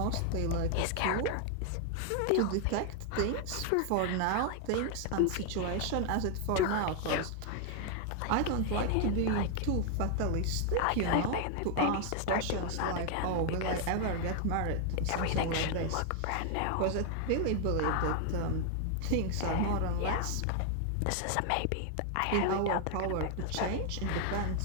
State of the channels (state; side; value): different; both; correlation 0.00